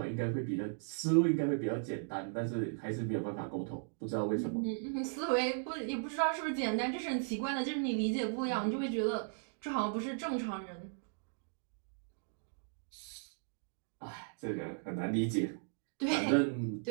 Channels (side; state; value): left; silent; digital silence